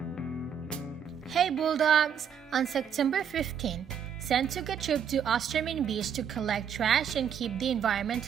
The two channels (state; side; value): quieter; left; 8.0 dB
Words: Hey Bulldogs! On September 15th, Senn took a trip to Osterman Beach to collect trash and keep the